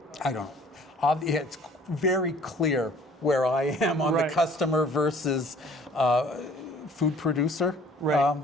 don't know. It's very clear where I am on the customer versus food producer,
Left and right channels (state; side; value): normal; both; correlation 0.54